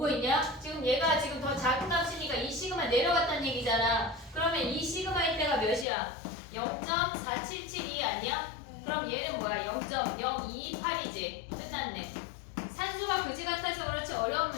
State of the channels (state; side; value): drops out; right; at 5.9 s